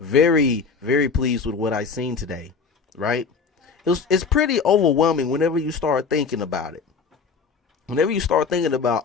very pleased with what I've seen today, right? It's pretty overwhelming whenever you start thinking about it. Whenever you start thinking about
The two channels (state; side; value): quieter; right; 5.2 dB